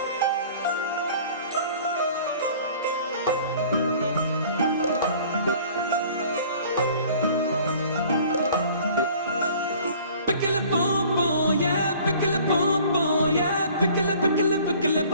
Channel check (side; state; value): both; inverted; correlation -0.50